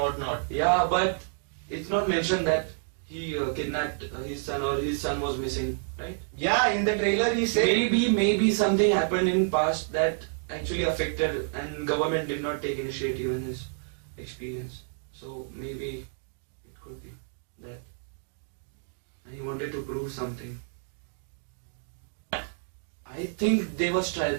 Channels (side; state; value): left; silent; digital silence